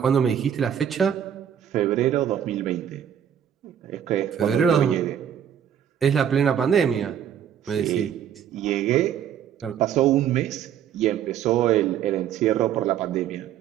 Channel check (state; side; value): quieter; left; 9.4 dB